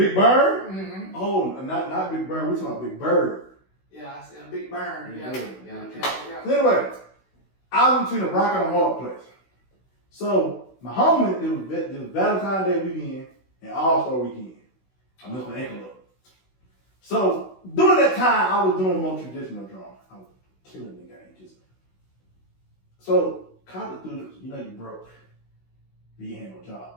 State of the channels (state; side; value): late; right; 16 ms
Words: Bird? Mm-hmm. Oh, not Big Bird. We're talking about Big Bird. Yeah, I said Big Bird. Yeah. So anyway, I was between a rock and a hard place. So my homie, it was Valentine's Day weekend and All-Star weekend. I messed my ankle up. So during that time, I was doing more traditional drawing. I was killing the game. So college students, you know you broke. You ain't had no